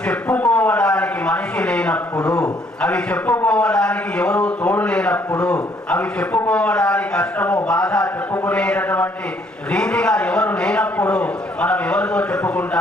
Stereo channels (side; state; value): both; normal; correlation 0.66